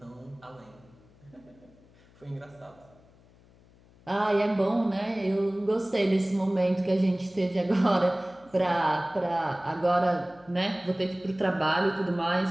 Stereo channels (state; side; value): noise; left; hum, 28 dB below the sound